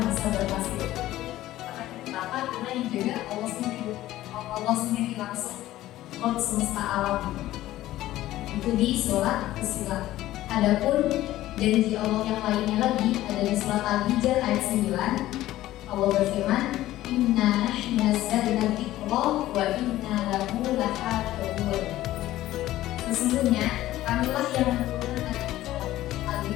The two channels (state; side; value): quieter; right; 15.0 dB